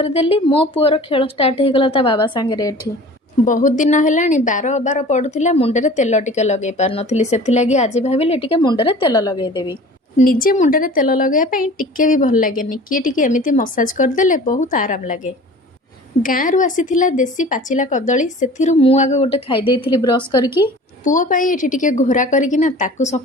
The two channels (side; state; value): both; normal; correlation 0.43